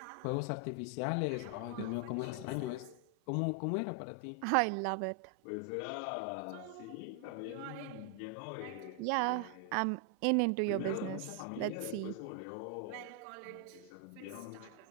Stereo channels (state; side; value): different; both; correlation 0.00